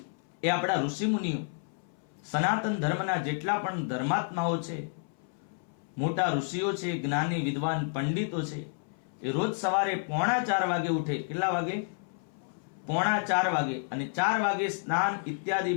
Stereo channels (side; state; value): right; silent; 58 dB below the other